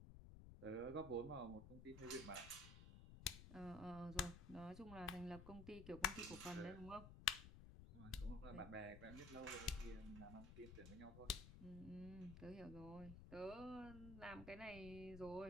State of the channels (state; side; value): noise; left; rumble, 11 dB below the sound